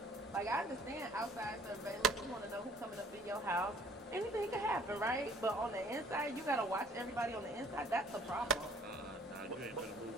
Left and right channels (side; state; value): both; normal; correlation 0.55